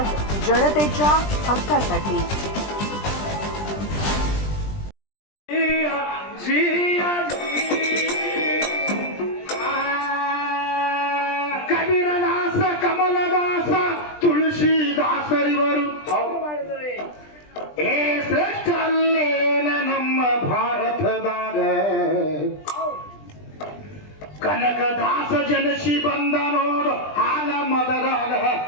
जनतेच्या हक्कासाठी. ಕಬೀರದಾಸ ಕಮಲದಾಸ ತುಳಸಿದಾಸರಿವರು ಏ ಶ್ರೇಷ್ಠ ಅಲ್ಲೇನ ನಮ್ಮ ಭಾರತದಾಗ ಕನಕದಾಸ ಜನಸಿ ಬಂದ ನೋಡು ಹಾಲ ಮದರಾಗ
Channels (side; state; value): right; late; 20 ms